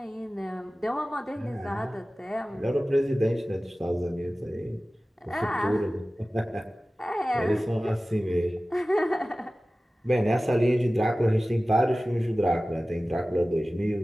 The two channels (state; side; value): normal; both; correlation 0.97